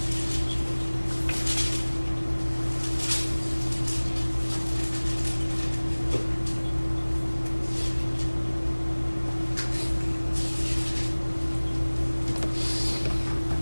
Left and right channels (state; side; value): inverted; both; correlation -1.00